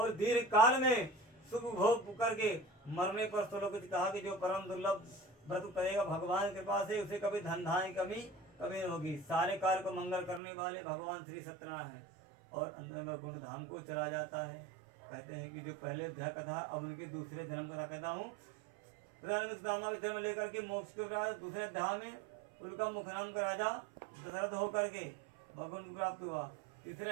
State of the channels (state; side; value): drops out; left; at 10.4 s